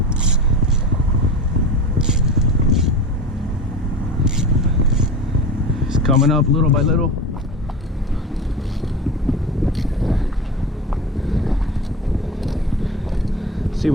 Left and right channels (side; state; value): both; normal; correlation 0.30